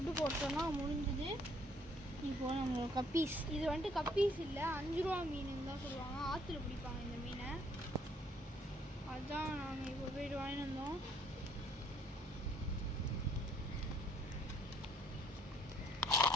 போட்டோன்னா முடிஞ்சுது. இப்போது நம்ம கப்பீஸ், இது வந்துட்டு கப்பீஸ் இல்லை, 5 ரூபா மீனுன்னு தான் சொல்லுவாங்க. ஆற்றுல பிடிப்பாங்க இந்த மீனை. அதுதான் நாங்கள் இப்போ போய்ட்டு வாங்கிட்டு வந்தோம்.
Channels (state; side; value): normal; both; correlation 0.64